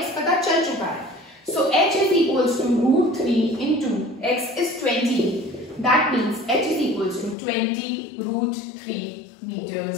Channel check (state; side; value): drops out; right; at 7.4 s